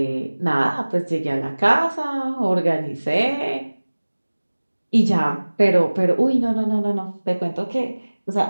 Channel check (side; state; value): both; inverted; correlation -1.00